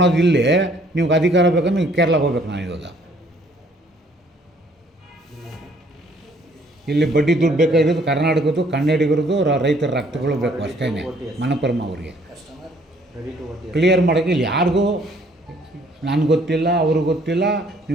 ಇಲ್ಲಿ ನಿಮ್ಗೆ ಅಧಿಕಾರ ಬೇಕಂದ್ರೆ ನೀವು ಕೇರಳಕ್ಕೆ ಹೋಗ್ಬೇಕು. ನಾನು ಇವಾಗ ಇಲ್ಲಿ ಬಡ್ಡಿ ದುಡ್ಡು ಬೇಕಾಗಿರೋದು ಕರ್ನಾಟಕದ್ದು, ಕನ್ನಡಿಗರದು, ರೈತರ ರಕ್ತಗಳು ಬೇಕು ಅಷ್ಟೇ. ಮನಪುರಮ ಅವ್ರಿಗೆ ಕ್ಲಿಯರ್ ಮಾಡೋಕ್ಕೆ ಇಲ್ಲಿ ಯಾರಿಗೂ ನನಗೆ ಗೊತ್ತಿಲ್ಲ, ಅವ್ರಿಗೆ ಗೊತ್ತಿಲ್ಲ.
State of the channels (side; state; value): both; normal; correlation 0.62